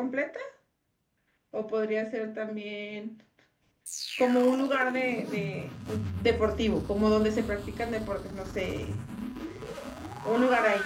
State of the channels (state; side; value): identical; both; correlation 1.00